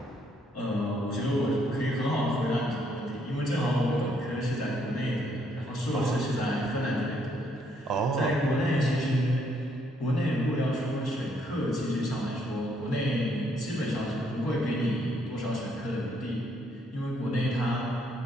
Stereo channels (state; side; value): normal; both; correlation 0.71